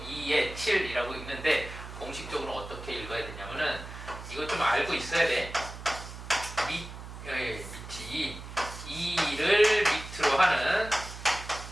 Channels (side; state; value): right; noise; hum, 12 dB below the sound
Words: 2의 7이라고 읽는데 공식적으로 어떻게 읽어야 되냐면은 이거 좀 알고 있어야 돼. 밑이 2를 밑으로 하는